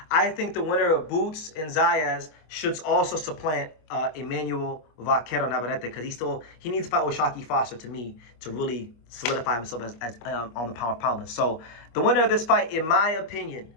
I think the winner of Boots and Zayas should also supplant Emmanuel Vaquero Navarrete because he needs to fight with Shockey Foster to me to really solidify himself as on the pound for pound list. So the winner of this fight, in my opinion,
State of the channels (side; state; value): right; late; 25 ms